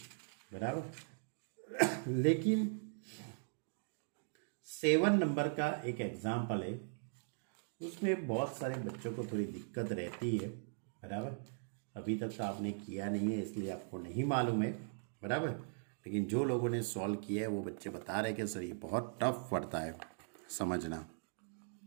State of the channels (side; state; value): left; silent; digital silence